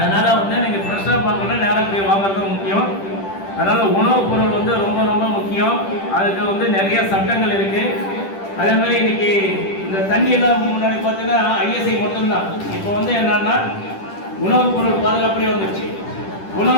நீங்கள் ஃப்ரெஷ்ஷாக பார்க்கணுன்னா நேராக போய் வாங்குறது முக்கியம். அதனால் உணவுப் பொருள் ரொம்ப ரொம்ப முக்கியம். அதுக்கு நிறைய சட்டங்கள் இருக்குது. அதே மாதிரி இன்னைக்கு இந்த தண்ணியெல்லாம் முன்னாடி பார்த்தீங்கன்னா ஐஎஸ்ஐ மட்டும்தான். இப்போ என்னன்னா உணவுப் பொருள் பாதுகாப்புலேயே வந்துடுச்சு.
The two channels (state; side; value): late; right; 10 ms